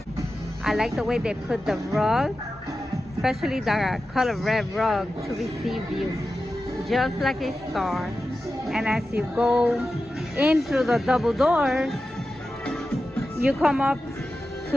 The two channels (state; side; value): normal; both; correlation 0.92